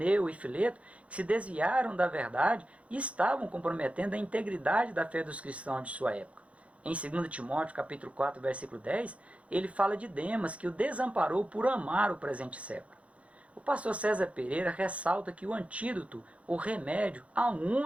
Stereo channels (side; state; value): left; late; 0.063 ms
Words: e Fileto que se desviaram da verdade e estavam comprometendo a integridade da fé dos cristãos de sua época. Em 2 Timóteo, capítulo 4, versículo 10, ele fala de Demas, que o desamparou por amar o presente século. O pastor César Pereira ressalta que o antídoto, o remédio, a